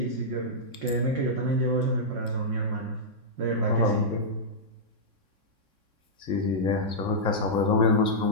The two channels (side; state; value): left; late; 3.6 ms